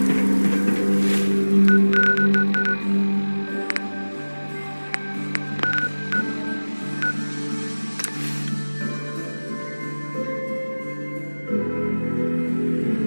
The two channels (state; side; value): inverted; both; correlation -1.00